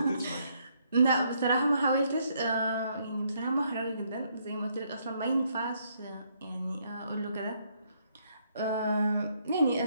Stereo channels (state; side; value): inverted; both; correlation -0.72